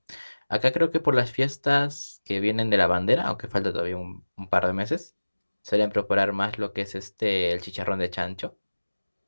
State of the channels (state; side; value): inverted; both; correlation -1.00